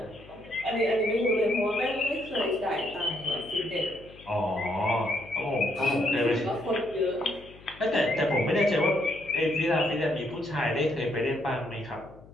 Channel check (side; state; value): left; noise; hum, 22 dB below the sound